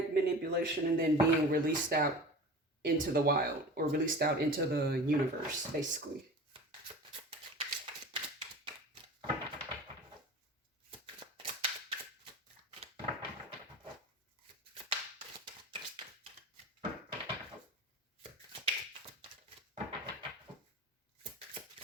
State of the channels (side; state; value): both; normal; correlation 0.37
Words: manipulation and then being released out into the wild, or released out into the universe, basically.